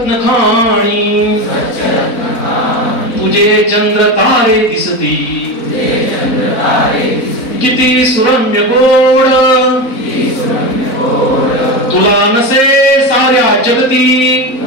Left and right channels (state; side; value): late; right; 4.1 ms